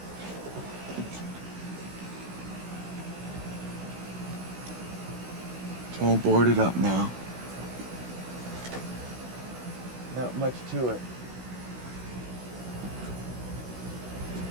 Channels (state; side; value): late; left; 16 ms